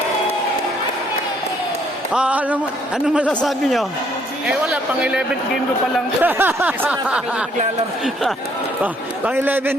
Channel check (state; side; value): normal; both; correlation 0.66